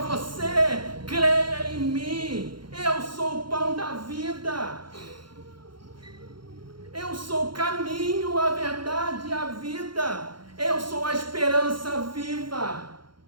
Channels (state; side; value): late; left; 0.72 ms